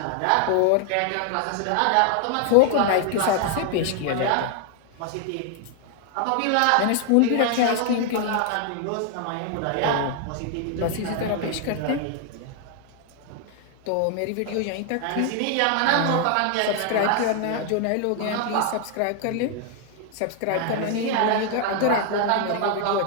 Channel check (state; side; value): different; both; correlation 0.00